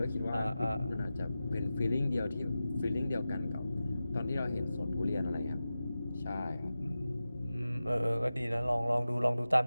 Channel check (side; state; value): both; inverted; correlation -0.94